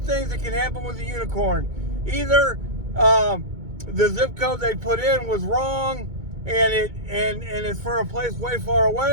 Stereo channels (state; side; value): late; left; 2.2 ms